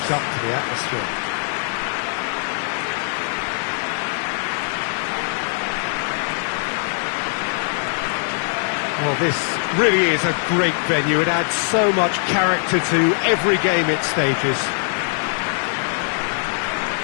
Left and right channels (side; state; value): right; silent; 62 dB below the other